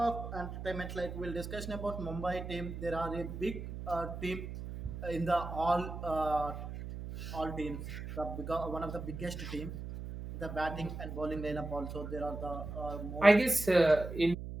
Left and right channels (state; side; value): noise; right; hum, 8 dB below the sound